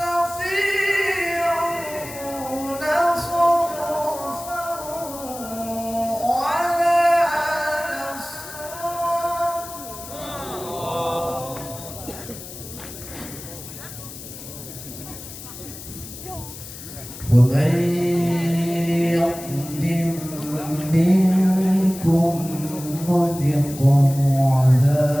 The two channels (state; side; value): noise; left; hiss, 13 dB below the sound